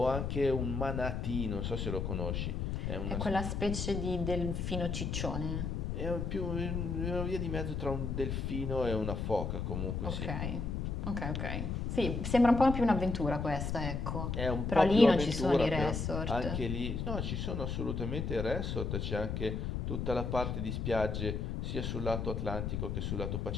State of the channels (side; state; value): left; noise; rumble, 2 dB below the sound